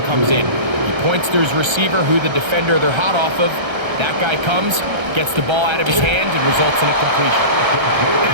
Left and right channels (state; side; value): late; left; 1.3 ms